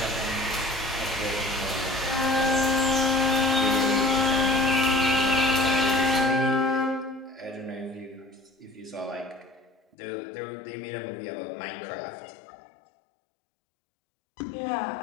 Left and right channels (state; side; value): drops out; right; at 10.0 s